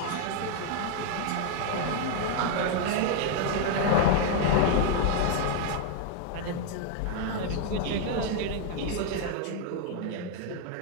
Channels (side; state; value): both; different; correlation 0.00